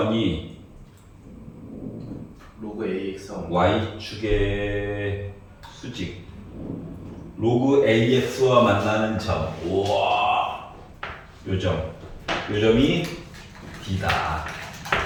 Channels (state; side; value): identical; both; correlation 1.00